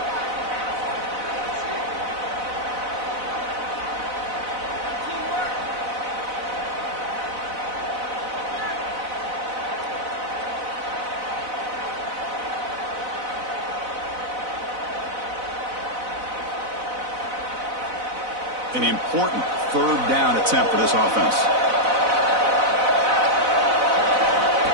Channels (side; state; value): left; late; 4.0 ms